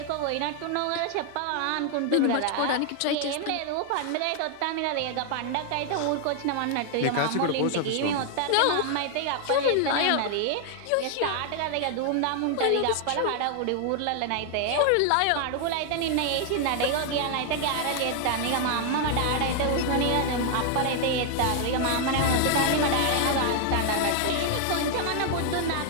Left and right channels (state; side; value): different; both; correlation 0.00